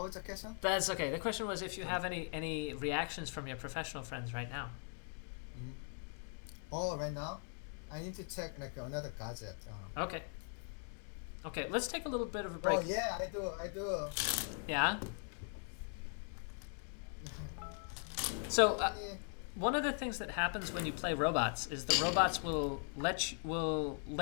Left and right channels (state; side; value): silent; right; 51 dB below the other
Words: the question? That's okay. The question was if you have any reactions from your professional friends right now. Mm-hmm. Oh, right now, I need to check another gadget. Okay. Okay, let's take a little bit of a break. Oh yeah, I do. Yeah. So one of the things that happens when you play robots is the robots will